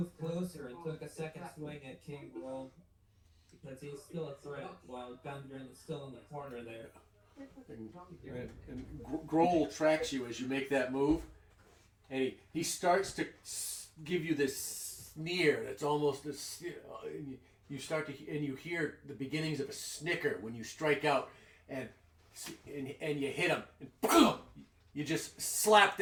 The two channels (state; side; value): identical; both; correlation 1.00